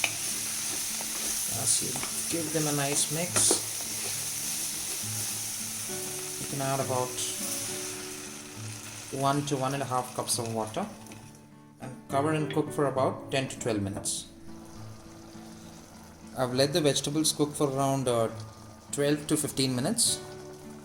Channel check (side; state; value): both; identical; correlation 1.00